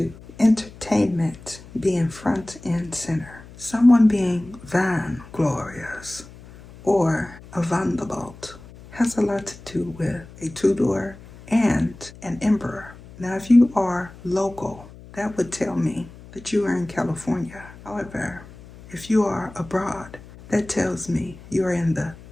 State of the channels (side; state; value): left; noise; hum, 19 dB below the sound